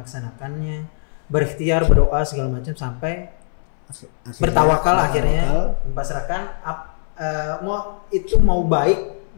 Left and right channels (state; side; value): silent; right; 64 dB below the other